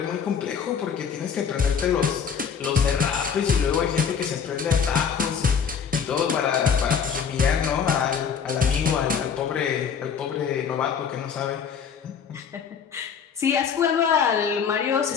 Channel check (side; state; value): right; quieter; 6.9 dB